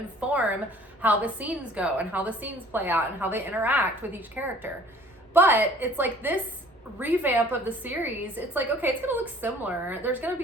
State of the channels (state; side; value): normal; both; correlation 0.52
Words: how the scenes go and how the scenes play out and how they interact with each character. But it's like this revamp of the series, it's like, okay, it's going to look similar. There's going to